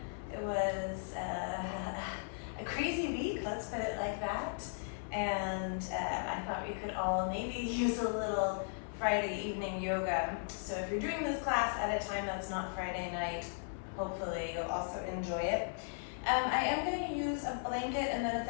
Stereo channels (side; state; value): right; silent; 53 dB below the other